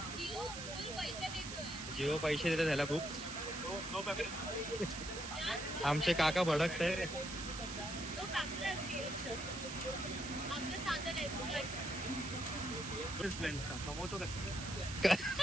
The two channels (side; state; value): right; noise; hiss, 8 dB below the sound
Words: जिओ पैसे देतात त्याला खूप. आमचे काका भडकताय.